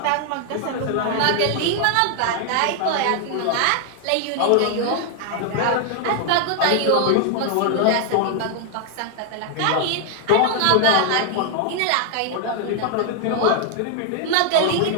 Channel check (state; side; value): different; both; correlation 0.00